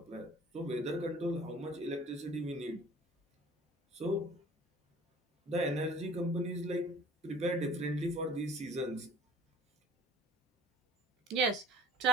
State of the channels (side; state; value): both; normal; correlation 0.48